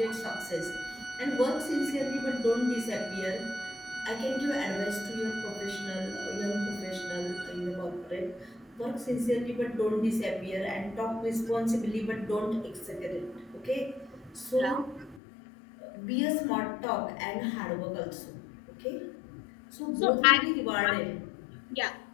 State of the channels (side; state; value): right; drops out; at 15.2 s